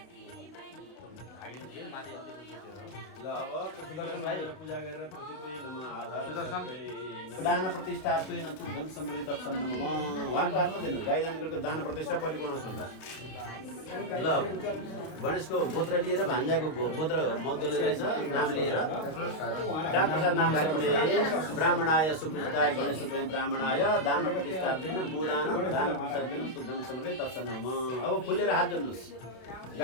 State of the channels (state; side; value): late; right; 32 ms